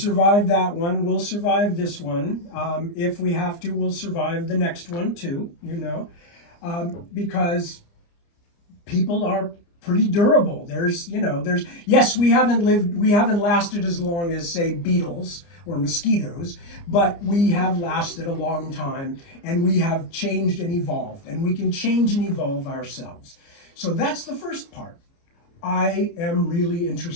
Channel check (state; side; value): late; right; 29 ms